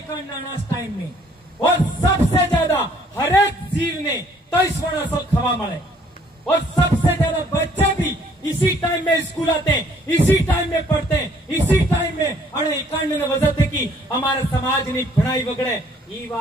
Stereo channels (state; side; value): normal; both; correlation 0.61